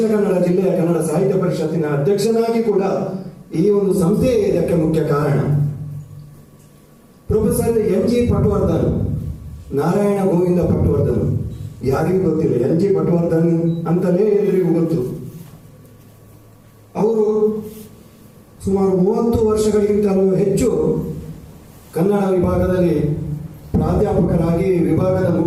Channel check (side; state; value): both; identical; correlation 1.00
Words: ಕನ್ನಡ ಜಿಲ್ಲೆಯ ಕನ್ನಡ ಸಾಹಿತ್ಯ ಪರಿಷತ್ತಿನ ಅಧ್ಯಕ್ಷನಾಗಿ ಕೂಡ ಈ ಒಂದು ಸಂಸ್ಥೆ ಇದಕ್ಕೆ ಮುಖ್ಯ ಕಾರಣ. Professor N G Patwardhan, Narayana Govinda Patwardhan ಯಾರಿಗೂ ಗೊತ್ತಿಲ್ಲ, ಎನ್ ಜಿ ಪಟವರ್ಧನ್ ಅಂತಲೇ ಎಲ್ಲರಿಗೂ ಗೊತ್ತು. ಅವರು ಸುಮಾರು 30 ವರ್ಷಗಳಿಗಿಂತಲೂ ಹೆಚ್ಚು ಕನ್ನಡ ವಿಭಾಗದಲ್ಲಿ ಪ್ರಾಧ್ಯಾಪಕರಾಗಿ, ವಿಭಾಗದ